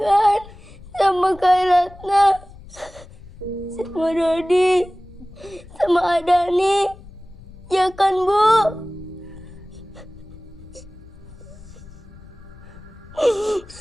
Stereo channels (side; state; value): left; noise; rumble, 19 dB below the sound